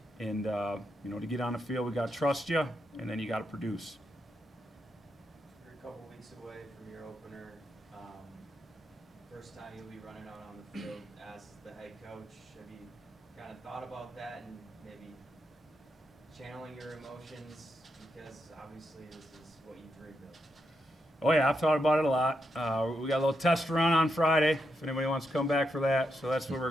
and, to get on the field, we got to trust you, and then you got to produce. You're a couple weeks away from your opener. First time you'll be running out on the field as the head coach. Have you kind of thought about that and maybe channeling your emotions, because obviously this is what you dreamed of? Oh yeah, I've thought about it a lot. We got a little test run on Friday, if anybody wants to come back for that. So that's where we're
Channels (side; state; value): both; normal; correlation 0.83